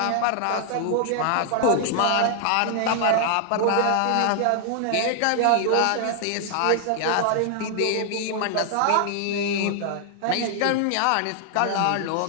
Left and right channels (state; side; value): different; both; correlation 0.00